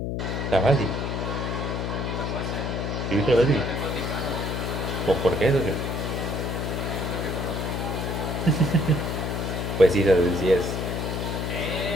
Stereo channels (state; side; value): noise; left; hum, 2 dB below the sound